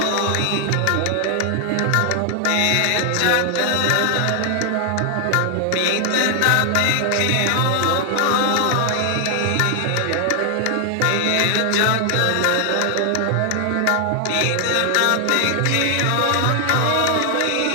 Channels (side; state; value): both; different; correlation 0.00